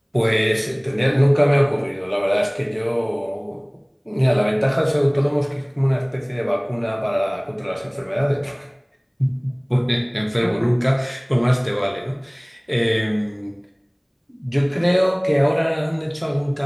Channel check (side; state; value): both; identical; correlation 1.00